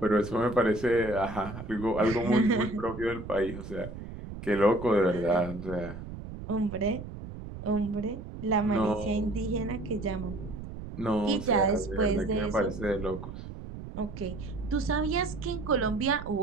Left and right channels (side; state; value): right; noise; rumble, 11 dB below the sound